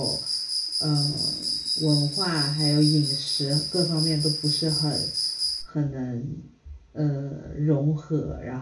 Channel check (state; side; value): identical; both; correlation 1.00